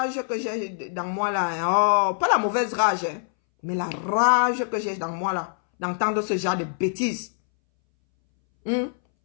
que j'ai dans moi là, oh, pas la mauvaise rage, hein, mais la rage que j'ai dans moi là, d'entendre ce genre de bêtises.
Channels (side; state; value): right; silent; 62 dB below the other